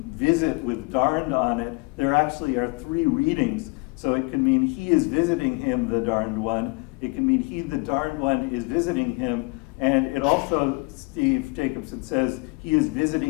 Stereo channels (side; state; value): right; quieter; 27.5 dB